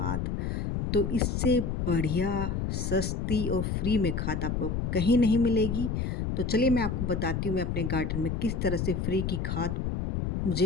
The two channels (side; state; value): left; noise; rumble, 1 dB below the sound